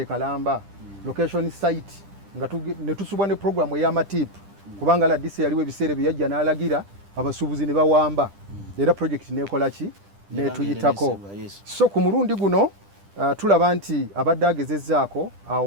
Kalamba location site nga ne tusubwa ne programu ey'amatiipu kubanga RDC yaliwo ebiseera bye yajja n'alagira abasuubuzi ne bawamba era project neekola ki netuyitako. So ku mulundi guno tulaba nti abadde agezezzaako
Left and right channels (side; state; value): left; late; 10 ms